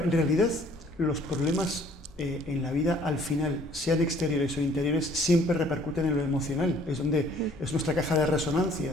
en realidad los problemas en la vida al final, sean exteriores o interiores, siempre repercuten en lo emocional, es nuestra caja de resonancia.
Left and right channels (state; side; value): normal; both; correlation 0.58